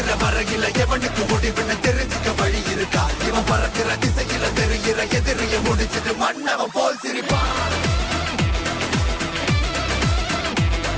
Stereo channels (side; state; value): both; identical; correlation 1.00